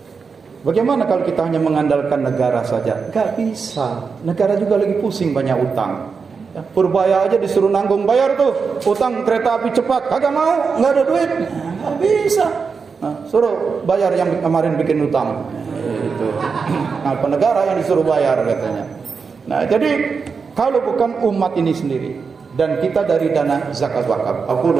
Bagaimana kalau kita hanya mengandalkan negara saja? Gak bisa. Negara juga lagi pusing, banyak utang. Ya, Purbaya aja disuruh nanggung bayar tuh utang kereta api cepat, kagak mau, nggak ada duit, nggak bisa. Nah, suruh bayar yang kemarin bikin utang. Itu. Nah, penegara yang disuruh bayar katanya. Nah, jadi kalau bukan umat ini sendiri, dan kita dari dana zakat wakaf. Aku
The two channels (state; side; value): quieter; left; 5.3 dB